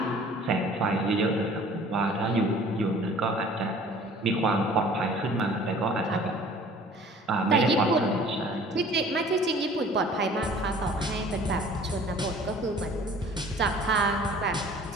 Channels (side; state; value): both; normal; correlation 0.49